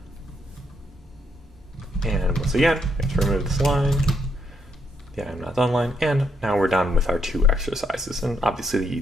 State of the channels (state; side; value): normal; both; correlation 0.75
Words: And once again, we have to remove this line, the I'm not done line, and now we're done with our 2 exercises. And obviously